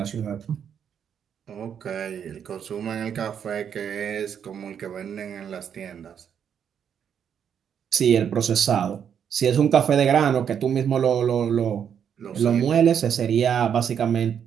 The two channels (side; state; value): left; quieter; 8.2 dB